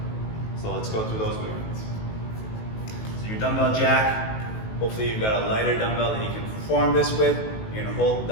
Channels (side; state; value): right; late; 18 ms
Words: So let's go through those movements. So your dumbbell jack, hopefully you've got a lighter dumbbell that you can perform this with. You're gonna hold the